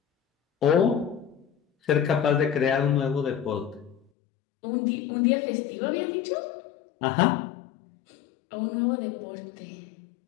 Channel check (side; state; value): right; drops out; at 4.0 s